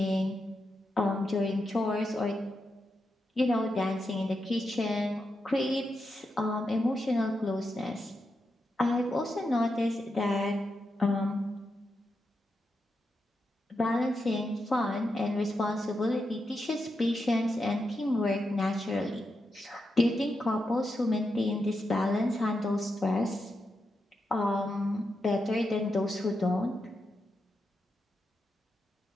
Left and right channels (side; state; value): both; normal; correlation 0.86